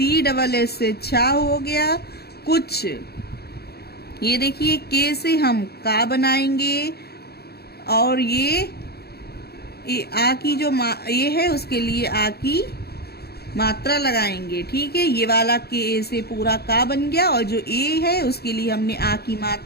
डबल एस से छा हो गया। कुछ, ये देखिए के से हम का बनाएंगे और ये आ की जो ये है उसके लिए आ की मात्रा लगाएंगे। ठीक है, ये वाला के ए से पूरा का बन गया और जो ए है उसके लिए हमने आ की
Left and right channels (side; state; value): right; late; 0.46 ms